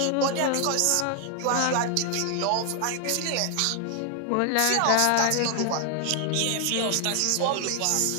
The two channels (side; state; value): both; different; correlation 0.00